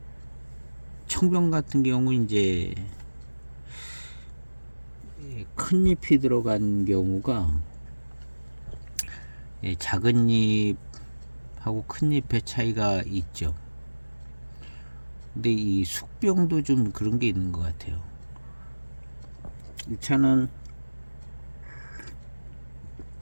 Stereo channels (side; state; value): both; inverted; correlation -1.00